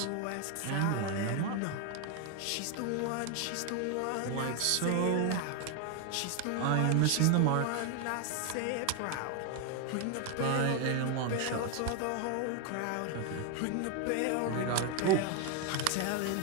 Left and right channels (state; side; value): different; both; correlation 0.01